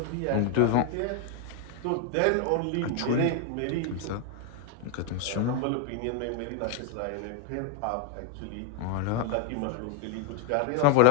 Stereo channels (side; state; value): both; different; correlation 0.00